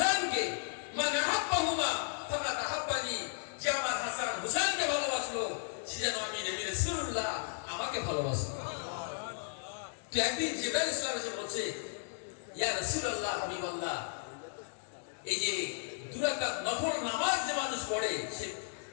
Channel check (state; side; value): silent; right; digital silence